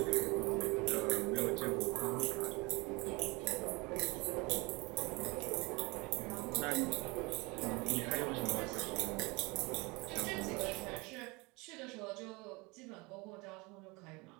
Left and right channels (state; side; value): quieter; left; 26.2 dB